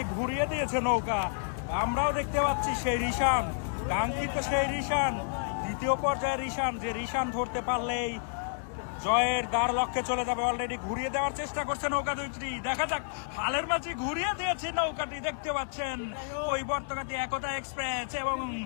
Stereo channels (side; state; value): right; silent; digital silence